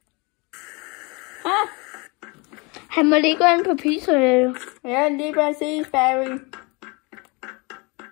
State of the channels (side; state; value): right; quieter; 28.5 dB